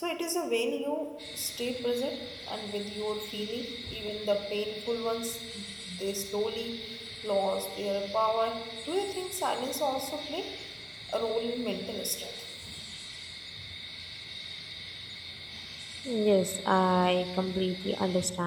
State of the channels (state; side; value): identical; both; correlation 1.00